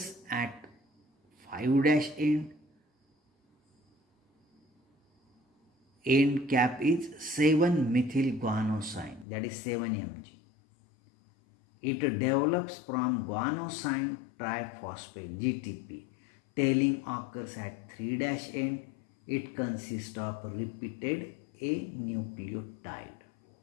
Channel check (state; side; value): drops out; right; at 9.2 s